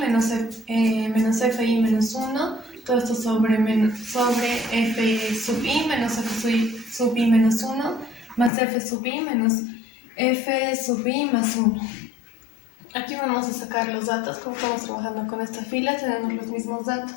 fi menos 1, todo esto sobre f sub i menos f sub i menos 1, más f sub i menos f sub i más 1. Aquí vamos a sacar los datos. Como estamos trabajando con esta fila, tenemos los mismos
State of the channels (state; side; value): drops out; right; at 8.5 s